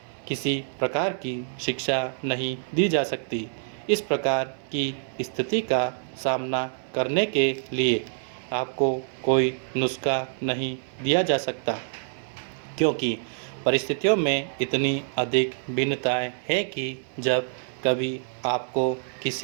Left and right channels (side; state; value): left; silent; 61 dB below the other